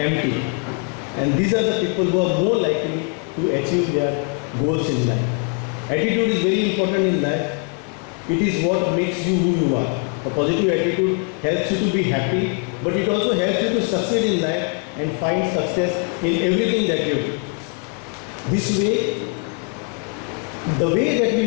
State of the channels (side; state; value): right; quieter; 34.3 dB